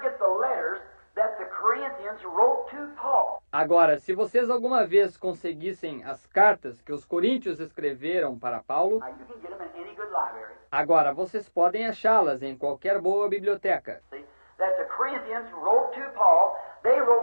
get the letters that the Corinthians wrote to Paul, Agora, se vocês alguma vez conseguissem as cartas que os coríntios escreveram para Paulo, now you can get them in any good library. agora vocês podem achá-las em qualquer boa biblioteca. See, that the Corinthians wrote to Paul, they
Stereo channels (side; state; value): both; inverted; correlation -1.00